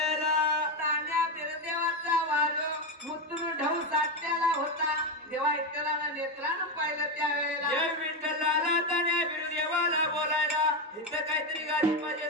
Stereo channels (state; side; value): normal; both; correlation 0.10